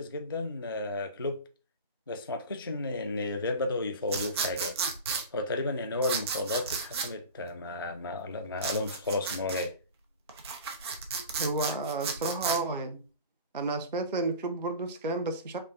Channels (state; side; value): inverted; both; correlation -0.34